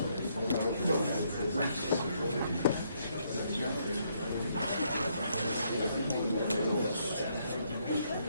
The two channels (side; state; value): both; inverted; correlation -0.72